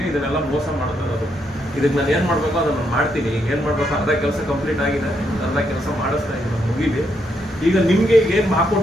ಇದನ್ನೆಲ್ಲ ಮೋಸ ಮಾಡ್ತಾ ಇರೋದು. ಇದಕ್ಕೆ ನಾನು ಏನು ಮಾಡಬೇಕು ಅದನ್ನು ಮಾಡ್ತೀನಿ. ಈಗ ಏನು ಮಾಡಬೇಕು, ಅರ್ಧ ಕೆಲಸ ಕಂಪ್ಲೀಟ್ ಆಗಿದೆ, ಅರ್ಧ ಕೆಲಸ ಮಾಡಿಸ್ತಾ ಇದ್ದೀನಿ, ಮುಗಿಲಿ. ಈಗ ನಿಮಗೆ ಏನು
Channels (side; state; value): both; normal; correlation 0.77